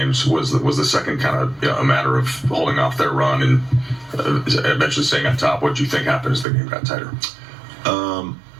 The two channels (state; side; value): drops out; left; at 6.5 s